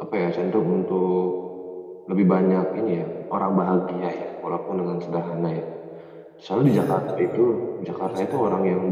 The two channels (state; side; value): identical; both; correlation 1.00